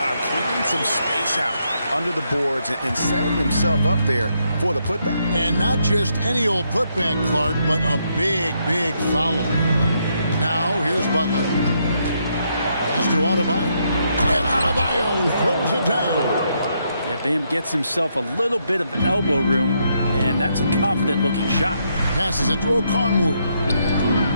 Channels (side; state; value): both; inverted; correlation -0.77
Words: clearing some space out under the boards and setting himself up there for the putback. And not just any old putback, Clark, but a big, big foul. Now, here's Butler. Pass to Adebayo. And Adebayo throws it down. Yeah, Bam gets himself a little bit of elbow room, and that's a confident-looking shot. Passes it to Okongwu.